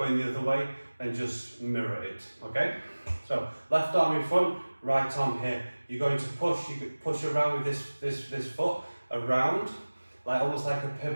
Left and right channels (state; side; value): inverted; both; correlation -1.00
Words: the other way, then just mirror it. Okay, so left arm in front, right arm here. You're going to push. You could push around with this foot around, like almost like a